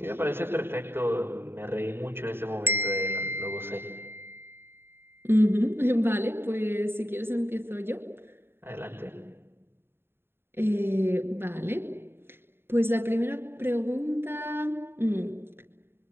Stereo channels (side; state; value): left; late; 0.11 ms